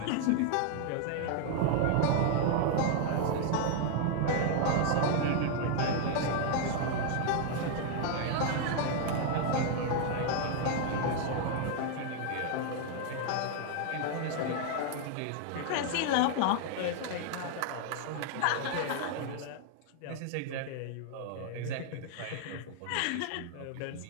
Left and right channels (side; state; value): both; different; correlation 0.00